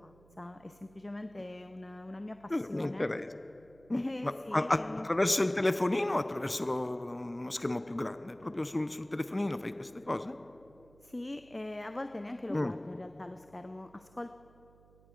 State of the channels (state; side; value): noise; right; hum, 26 dB below the sound